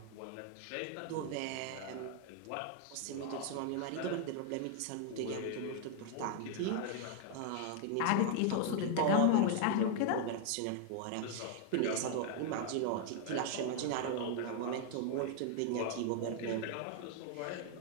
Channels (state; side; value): different; both; correlation 0.00